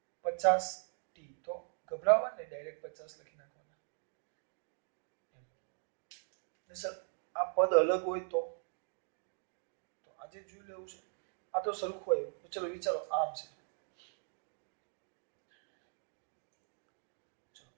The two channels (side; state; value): left; silent; 51 dB below the other